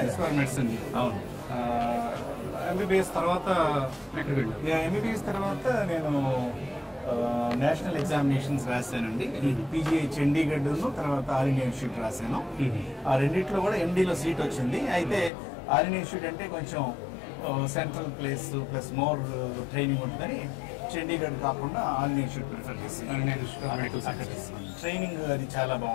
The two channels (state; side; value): drops out; right; at 15.3 s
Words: for medicine. అవును. ఎంబీబీఎస్ తర్వాత ఎక్కడికి వెళ్ళారు? ఎంబీబీఎస్ తర్వాత నేను నేషనల్ ఎగ్జామినేషన్స్ రాశానండి. పీజీఐ చండీగఢ్ తర్వాత ఆల్ ఇండియా ఇన్స్టిట్యూట్ రాశాను. ఆ రెండిట్లో కూడా ఎండీలో సీట్ వచ్చింది. అయితే ఆల్ ఇండియా ఇన్స్టిట్యూట్ అంటే కొంచెం central place plus more training ఉంటుందని చండీగఢ్ కాకుండా ఆల్ ఇండియా ఇన్స్టిట్యూట్ ప్రిఫర్ చేసి ట్రైనింగ్ అది చాలా